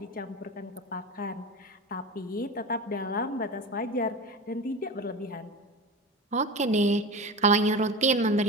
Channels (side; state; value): both; normal; correlation 0.28